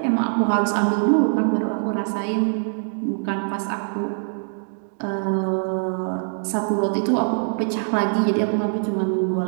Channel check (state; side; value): silent; left; digital silence